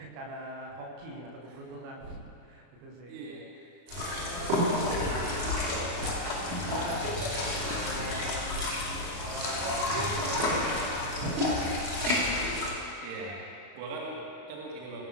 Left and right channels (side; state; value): left; late; 36 ms